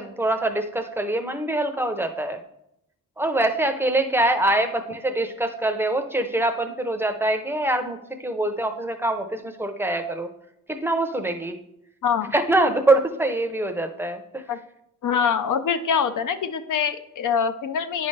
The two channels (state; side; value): normal; both; correlation 0.49